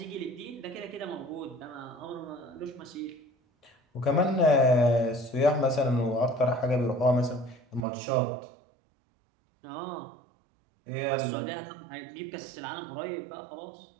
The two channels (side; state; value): left; drops out; at 7.9 s